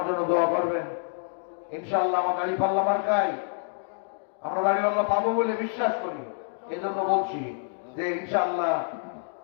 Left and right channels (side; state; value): right; silent; 60 dB below the other